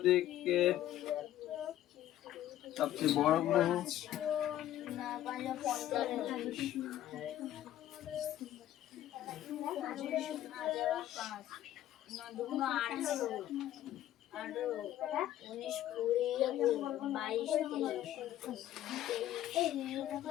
সবচেয়ে বড় গ্রহ।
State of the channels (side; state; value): right; quieter; 12.8 dB